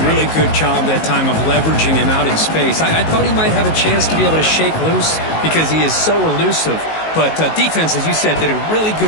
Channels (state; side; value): late; right; 19 ms